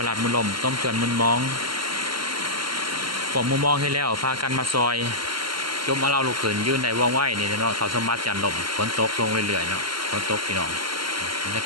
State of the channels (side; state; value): left; late; 0.73 ms